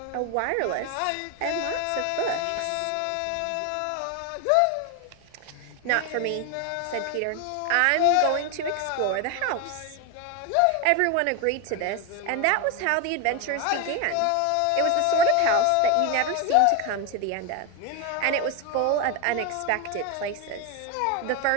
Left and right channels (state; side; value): different; both; correlation 0.02